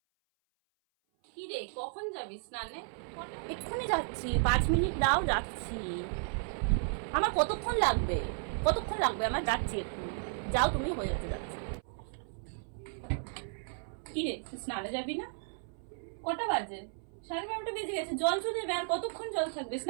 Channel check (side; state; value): left; silent; 55 dB below the other